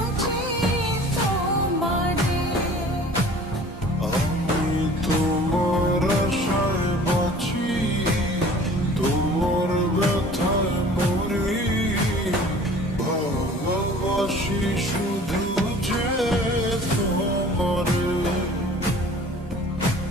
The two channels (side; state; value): both; normal; correlation 0.47